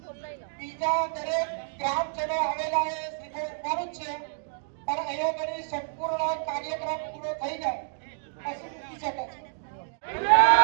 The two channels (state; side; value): silent; left; digital silence